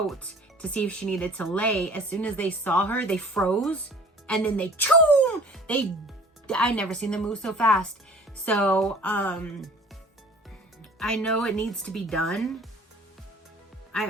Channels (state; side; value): normal; both; correlation 0.48